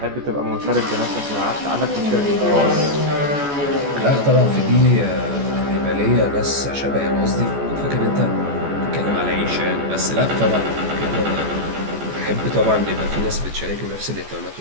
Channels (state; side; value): late; left; 14 ms